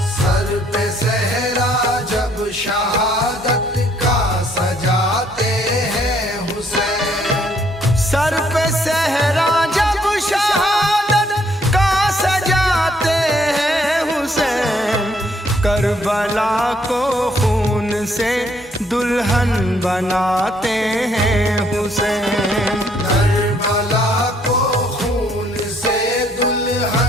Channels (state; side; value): normal; both; correlation 0.67